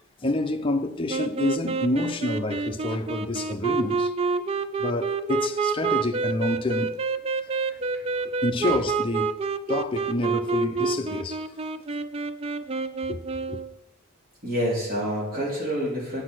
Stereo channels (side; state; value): both; normal; correlation 0.43